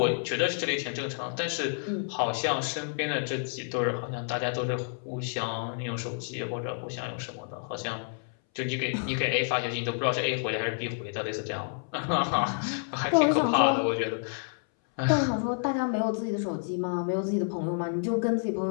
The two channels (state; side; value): silent; right; 58 dB below the other